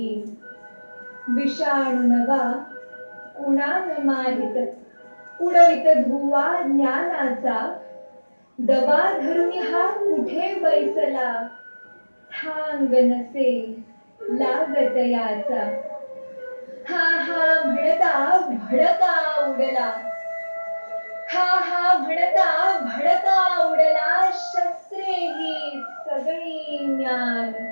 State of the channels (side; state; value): both; inverted; correlation -1.00